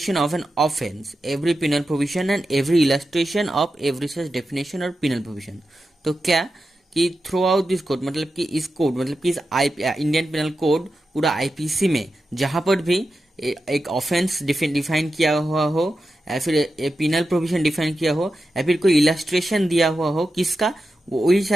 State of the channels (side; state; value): both; normal; correlation 0.90